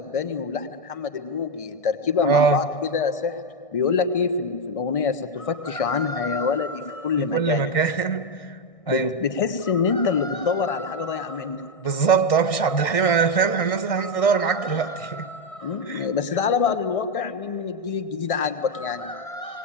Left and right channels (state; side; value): late; right; 1.6 ms